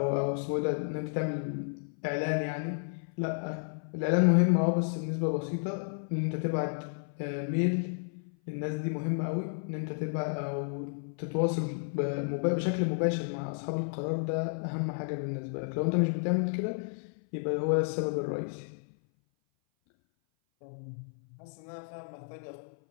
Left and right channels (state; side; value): silent; right; 57 dB below the other